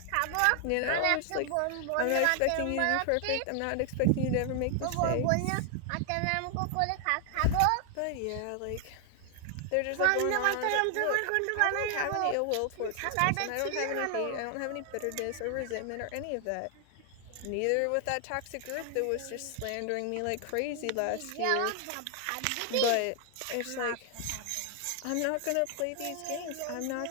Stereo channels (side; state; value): both; different; correlation 0.00